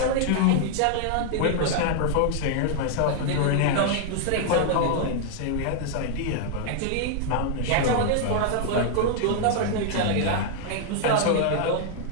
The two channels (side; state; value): both; different; correlation 0.00